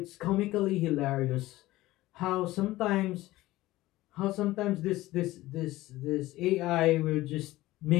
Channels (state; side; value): quieter; right; 17.4 dB